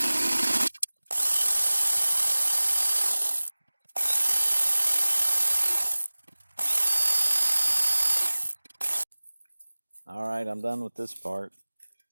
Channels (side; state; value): both; inverted; correlation -1.00